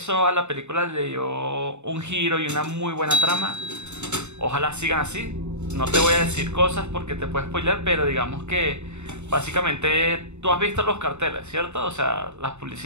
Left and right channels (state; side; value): late; left; 0.82 ms